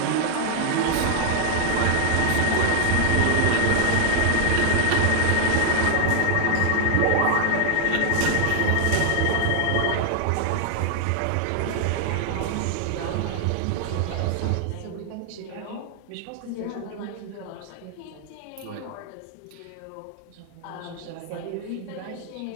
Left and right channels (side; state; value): both; different; correlation 0.00